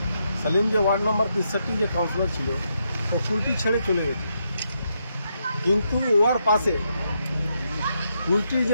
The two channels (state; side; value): inverted; both; correlation -0.79